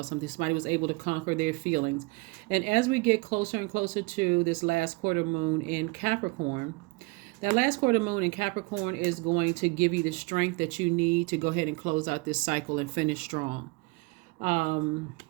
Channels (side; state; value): left; quieter; 26.6 dB